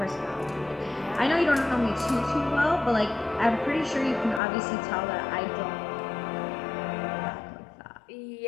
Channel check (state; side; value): drops out; right; at 4.4 s